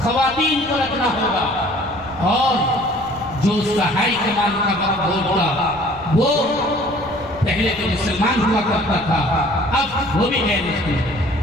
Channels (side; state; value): left; noise; rumble, 20 dB below the sound